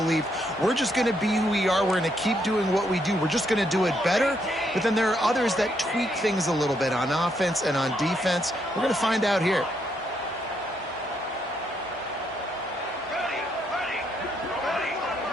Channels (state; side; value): normal; both; correlation 0.75